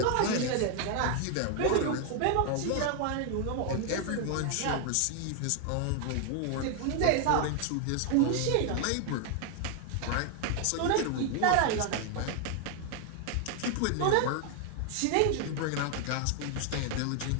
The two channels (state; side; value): different; both; correlation 0.00